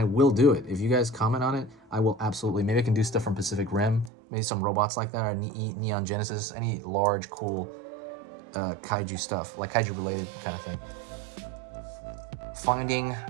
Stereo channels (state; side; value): drops out; left; at 4.1 s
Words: will do it. If you guys comment on it, I will absolutely. Maybe I can do stuff from Pacific Rim, maybe some robots like that, or Neon Genesis, any large, cool kaiju stuff, like kaiju related kind of thing. Finding